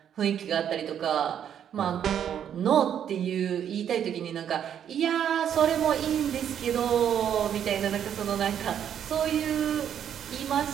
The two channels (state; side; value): quieter; left; 9.2 dB